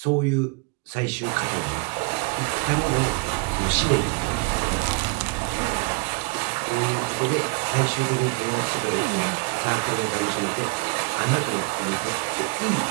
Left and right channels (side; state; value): left; quieter; 30.2 dB